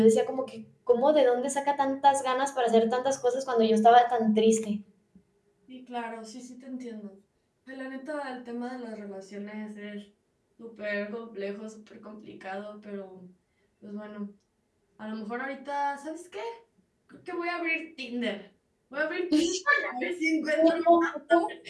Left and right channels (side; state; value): both; identical; correlation 1.00